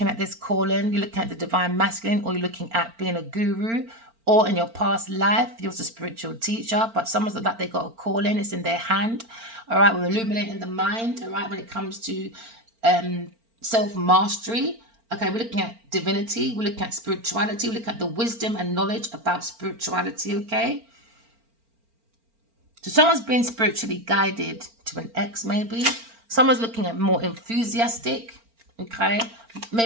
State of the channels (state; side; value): late; left; 4.4 ms